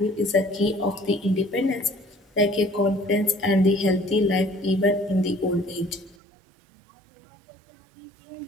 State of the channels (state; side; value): drops out; left; at 6.2 s